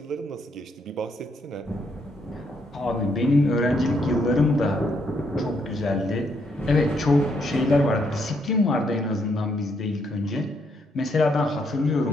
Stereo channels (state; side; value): normal; both; correlation 0.74